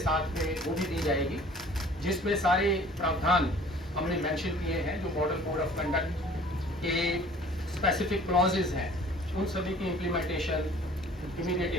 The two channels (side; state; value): both; normal; correlation 0.51